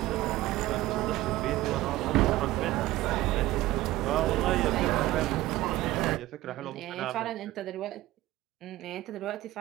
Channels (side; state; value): left; quieter; 16.7 dB